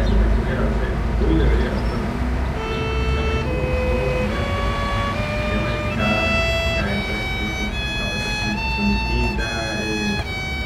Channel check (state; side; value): identical; both; correlation 1.00